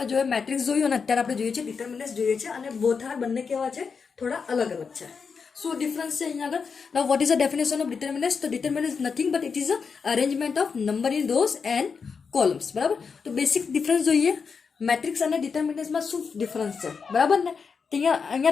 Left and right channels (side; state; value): right; quieter; 5.6 dB